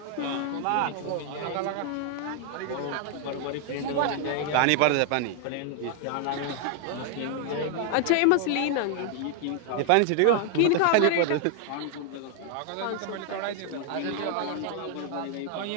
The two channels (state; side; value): different; both; correlation 0.00